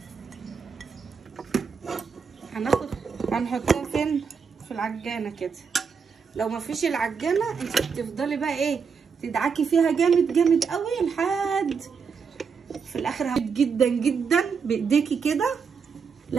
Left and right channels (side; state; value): left; quieter; 5.9 dB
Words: هنحطهم فين؟ في العجانه كده. لو مفيش العجانه انت بتفضلي بقى ايه تدعكي فيها جامد جامد قوي لحد في الاخر جدا جدا بايديكي كده